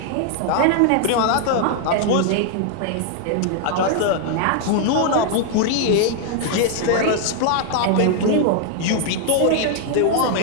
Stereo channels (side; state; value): both; different; correlation 0.00